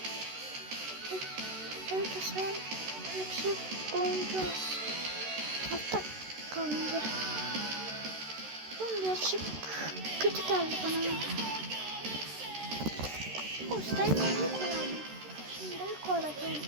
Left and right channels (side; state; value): left; late; 13 ms